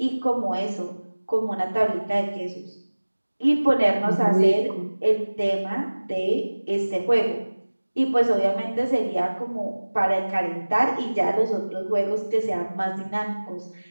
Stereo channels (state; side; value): inverted; both; correlation -1.00